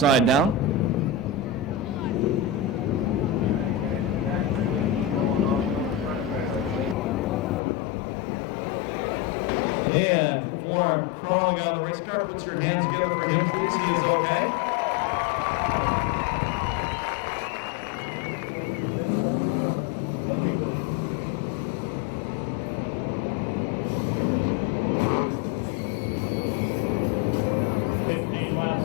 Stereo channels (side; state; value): right; drops out; at 7.6 s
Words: down. And Cliff Warren crawling out of the race car. Puts your hands together for him, please. He is okay.